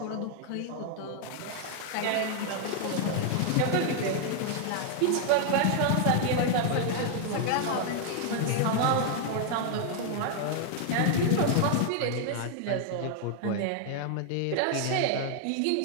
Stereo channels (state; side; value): different; both; correlation 0.00